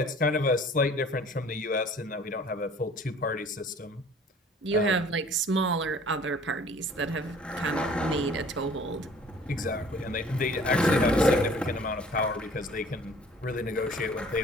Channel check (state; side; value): normal; both; correlation 0.51